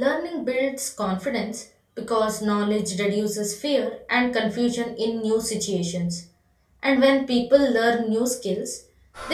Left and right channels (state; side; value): identical; both; correlation 1.00